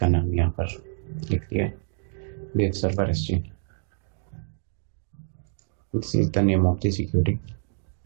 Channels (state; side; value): silent; left; digital silence